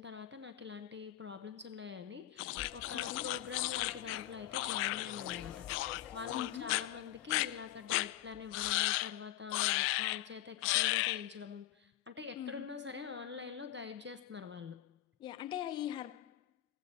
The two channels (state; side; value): quieter; right; 13.4 dB